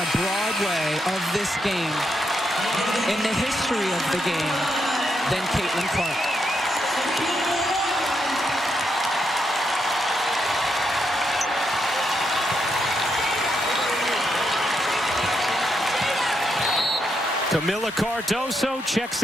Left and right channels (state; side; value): normal; both; correlation 0.81